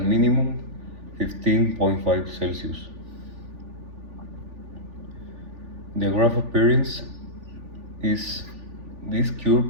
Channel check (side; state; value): left; late; 3.4 ms